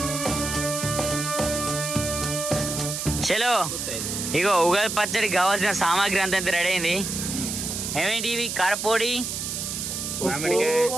చలో ఇగో ఉగాది పచ్చడికి కావాల్సిన సామాగ్రి అంతా రెడీ అయింది. ఏమేంటి ఇవి? కారపొడి,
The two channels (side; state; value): right; noise; hiss, 4 dB below the sound